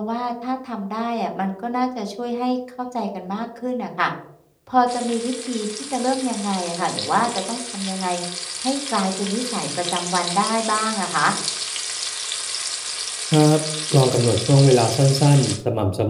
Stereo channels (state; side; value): identical; both; correlation 1.00